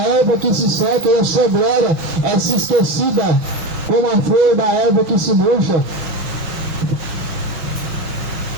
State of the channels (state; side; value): late; left; 6.7 ms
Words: erva que se seca, e a sua glória é se esquecida, como a flor da erva que se murcha.